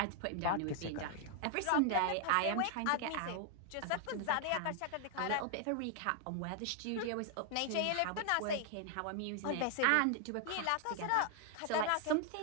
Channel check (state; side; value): different; both; correlation 0.00